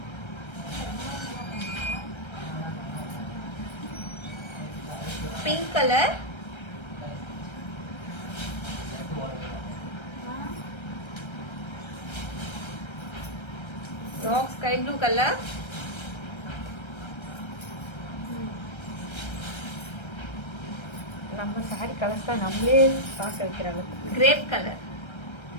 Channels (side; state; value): right; late; 1.3 ms